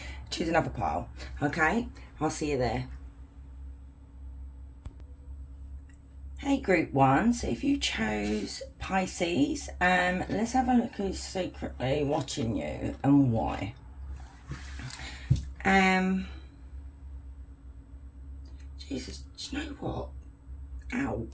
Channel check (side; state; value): both; identical; correlation 1.00